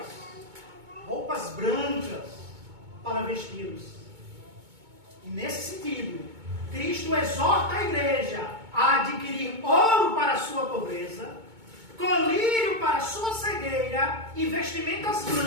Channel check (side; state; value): left; late; 2.2 ms